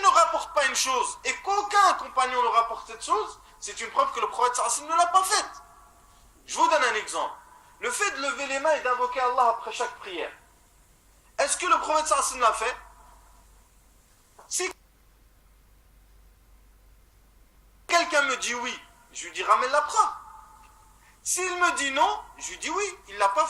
ne rapportent pas une chose et qu'aucun compagnon ne rapporte cette chose, c'est une preuve que le prophète sallallahu alayhi wa sallam ne l'a pas faite. Je vous donne un exemple. Le fait de lever les mains et d'invoquer Allah après chaque prière. Est-ce que le prophète sallallahu alayhi wa sallam l'a fait? Si quelqu'un me dit oui, je lui dis ramène la preuve. S'il me dit non, je lui dis oui, il ne l'a pas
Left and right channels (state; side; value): identical; both; correlation 1.00